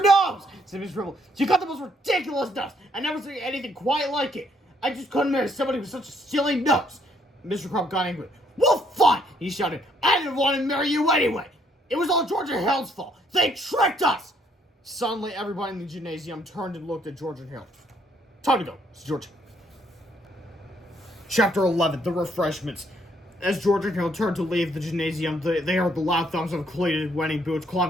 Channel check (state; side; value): normal; both; correlation 0.68